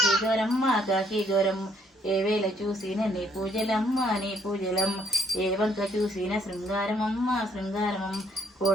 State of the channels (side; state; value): both; normal; correlation 0.66